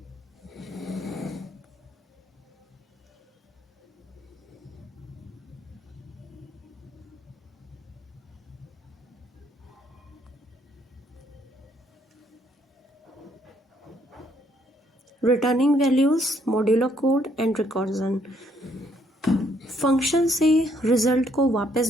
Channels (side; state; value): both; normal; correlation 0.69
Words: Returning values, modular code and recursion. Function से रिजल्ट को